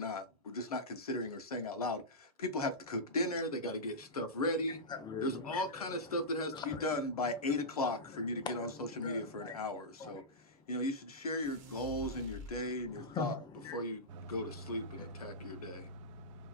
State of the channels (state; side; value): normal; both; correlation -0.13